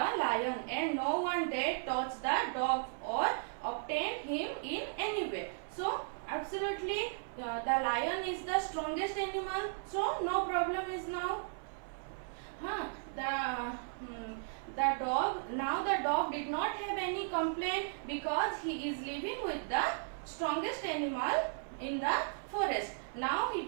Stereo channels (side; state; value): left; silent; 54 dB below the other